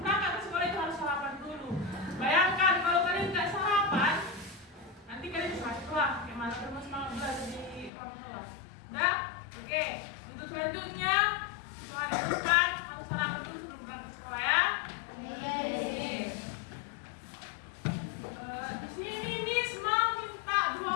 berangkat ke sekolah itu harus sarapan dulu. Bayangkan kalau kalian nggak sarapan, nanti kalian bisa sekolah. Gimana terus semangat belajar di orang tua? Dah, oke. Untuk selanjutnya, hari depan harus sarapan dulu sebelum berangkat ke sekolah ya. Di sini Miss mau minta 2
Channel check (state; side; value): drops out; right; at 7.9 s